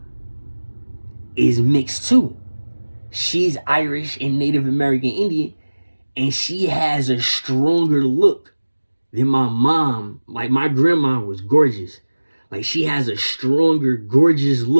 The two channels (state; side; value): inverted; both; correlation -1.00